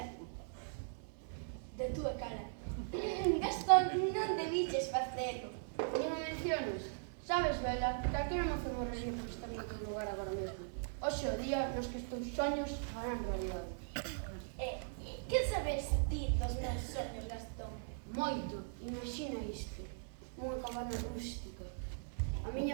de túa cara. Gastón, non debiches facelo. Non me menciones. Sabes, Bela, calquera mozo morrería por estar en outro lugar agora mesmo. Hoxe o día nos que os teus soños farán realidade. Que sabes ti dos meus soños, Gastón? Moito, imagina isto. Unha cabana rústica. A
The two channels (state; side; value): silent; left; digital silence